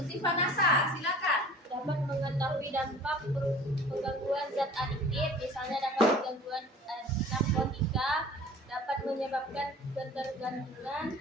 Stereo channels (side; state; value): both; normal; correlation 0.45